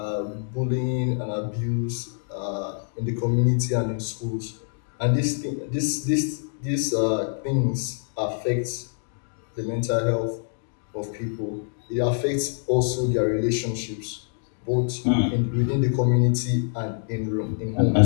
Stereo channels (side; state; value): right; silent; 61 dB below the other